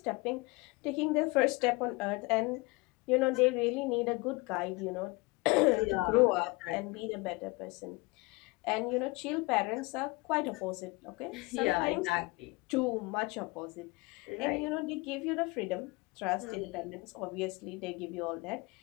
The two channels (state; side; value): quieter; right; 24.9 dB